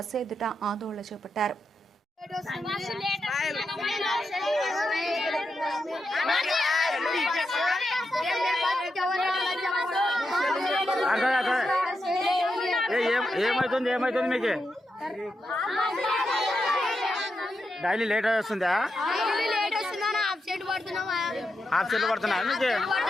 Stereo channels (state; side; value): normal; both; correlation 0.86